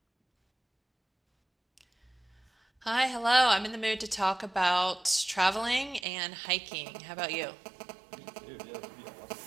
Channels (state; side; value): drops out; left; at 6.1 s